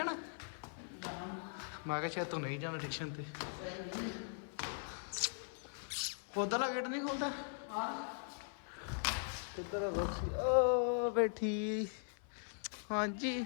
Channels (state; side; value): silent; right; 51 dB below the other